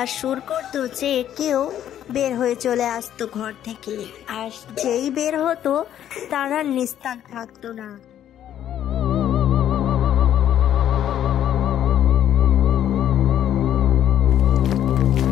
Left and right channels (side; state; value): right; quieter; 10.8 dB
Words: সুর করতো যে কেউ বের হয়ে চলে আসতো ঘর থেকে, আর যেই বের হতো তারা নিস্তার থাকতো না।